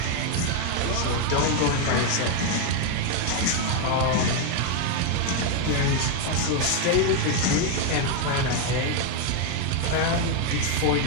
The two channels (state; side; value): different; both; correlation 0.01